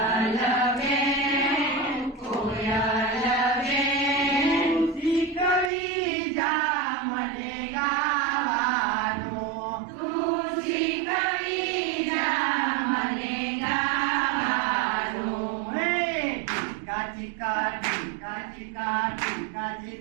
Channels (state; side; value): drops out; left; at 5.7 s